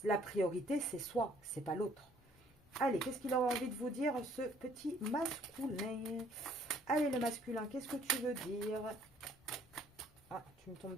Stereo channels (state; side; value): normal; both; correlation 0.61